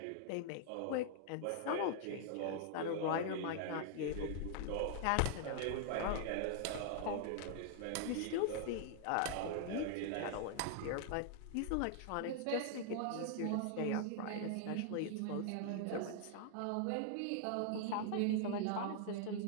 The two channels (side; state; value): both; different; correlation -0.01